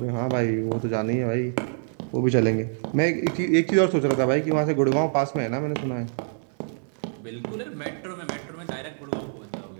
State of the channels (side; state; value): left; silent; digital silence